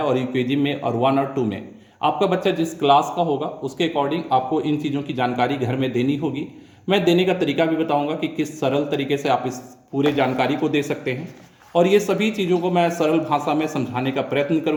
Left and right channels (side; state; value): both; identical; correlation 1.00